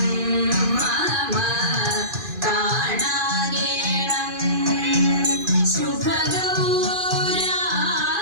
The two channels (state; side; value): late; left; 2.5 ms